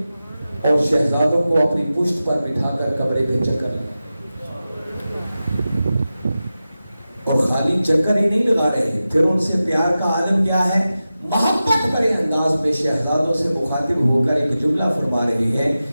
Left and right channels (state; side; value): inverted; both; correlation -0.94